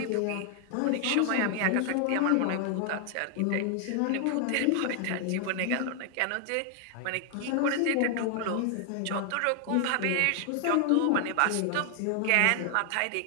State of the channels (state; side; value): different; both; correlation 0.00